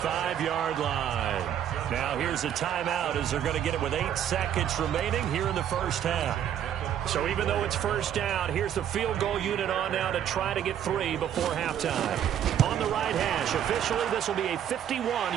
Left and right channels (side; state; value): left; quieter; 10.0 dB